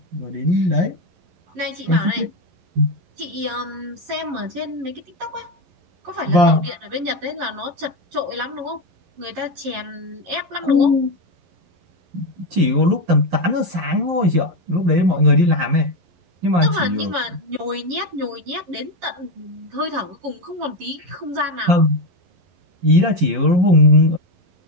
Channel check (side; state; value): left; late; 11 ms